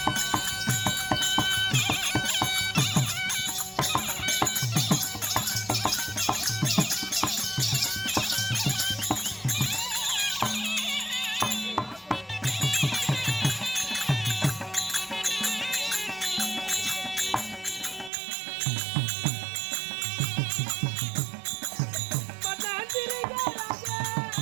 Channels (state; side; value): drops out; left; at 18.1 s